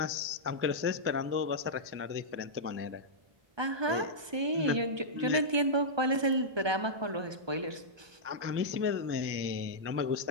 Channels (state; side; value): late; left; 1.2 ms